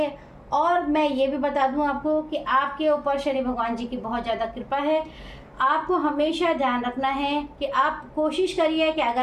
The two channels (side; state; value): both; identical; correlation 1.00